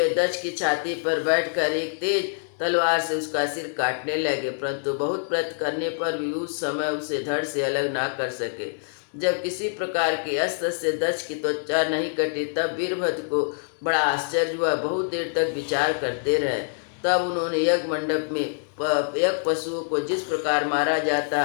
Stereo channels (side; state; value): right; silent; digital silence